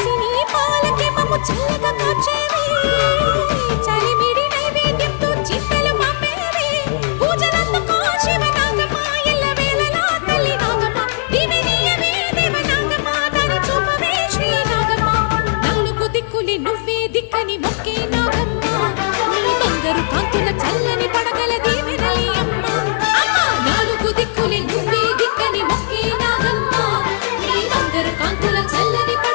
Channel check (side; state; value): right; silent; digital silence